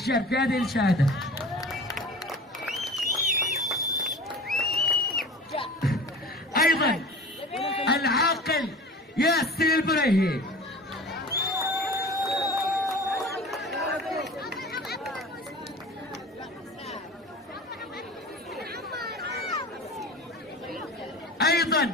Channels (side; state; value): both; normal; correlation 0.38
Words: في هذه الشهادة. أيضا العاقل ياسر البريهي.